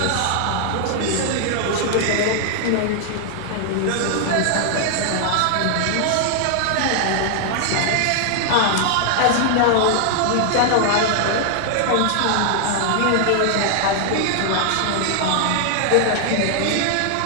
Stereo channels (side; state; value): both; different; correlation 0.00